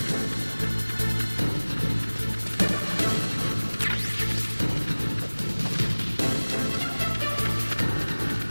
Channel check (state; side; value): inverted; both; correlation -1.00